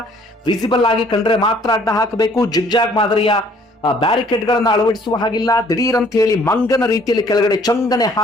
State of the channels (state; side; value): normal; both; correlation 0.59